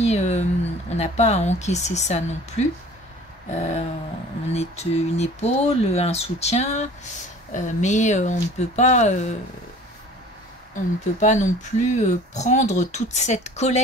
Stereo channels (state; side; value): normal; both; correlation 0.46